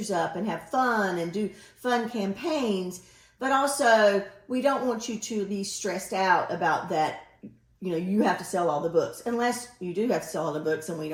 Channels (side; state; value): both; identical; correlation 1.00